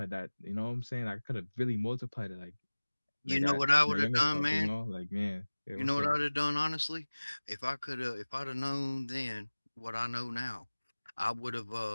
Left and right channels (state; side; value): inverted; both; correlation -1.00